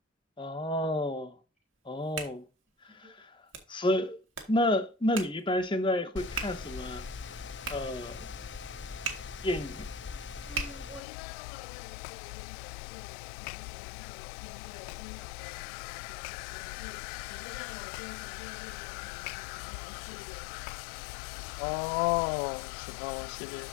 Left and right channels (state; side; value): drops out; right; at 11.0 s